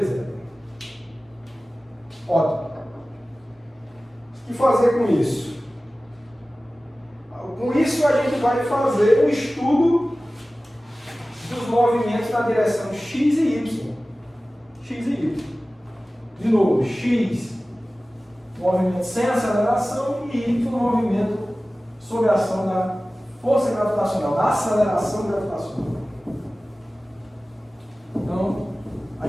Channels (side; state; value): both; normal; correlation 0.97